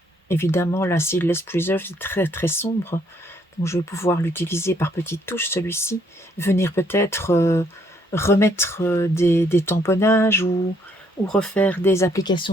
évidemment, la Seedless Preserve est très très sombre. Donc je vais pouvoir l'utiliser par petites touches, celui-ci. Venir peut-être remettre des tamponnages ou refaire des applications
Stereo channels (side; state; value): both; normal; correlation 0.68